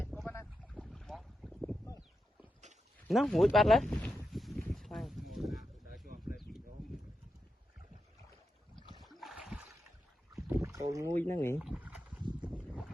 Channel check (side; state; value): both; normal; correlation 0.87